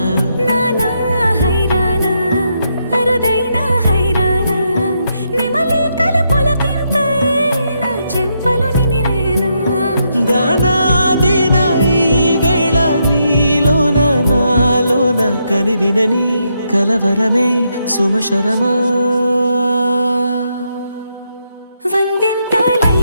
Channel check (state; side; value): inverted; both; correlation -0.79